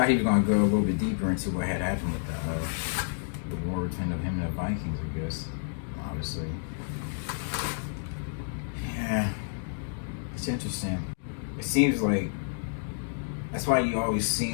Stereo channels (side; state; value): right; silent; digital silence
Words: he was going to go a little bit deeper into what had happened with the war between him and the Vikings, I guess. Obviously. Yeah. It's interesting. It seems like that's why you always